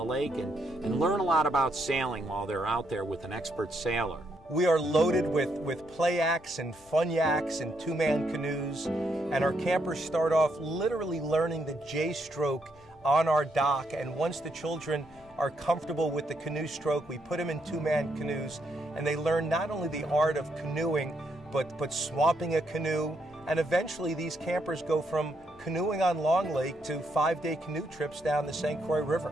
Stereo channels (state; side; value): noise; left; rumble, 27 dB below the sound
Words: lake and learn a lot about sailing while they're out there with an expert sailor. We are loaded with play acts and fun yaks and 2-man canoes, and our campers start off literally learning the J-stroke on our dock, and once the children are comfortable with the canoe stroke, we put them in 2-man canoes, and they learn not only the art of canoeing, but swamping a canoe. And eventually these campers go from canoeing on Long Lake to 5-day canoe trips down the St. Croix River.